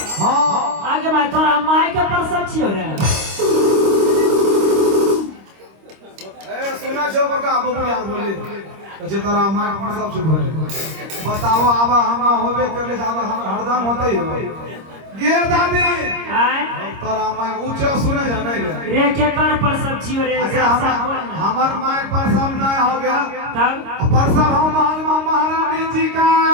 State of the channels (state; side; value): late; left; 26 ms